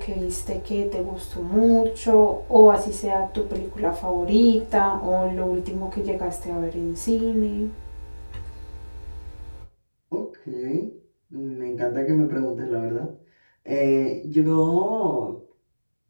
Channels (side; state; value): both; inverted; correlation -1.00